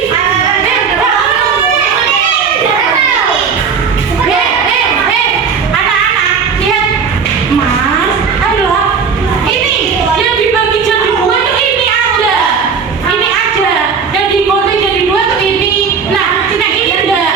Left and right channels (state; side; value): quieter; left; 6.0 dB